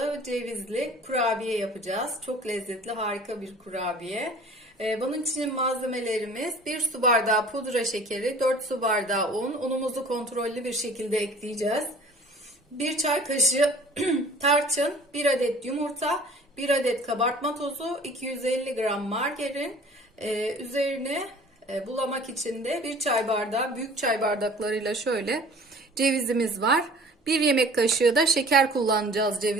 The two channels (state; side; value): normal; both; correlation 0.47